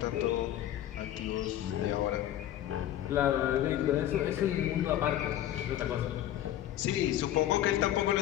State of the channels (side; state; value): right; quieter; 12.3 dB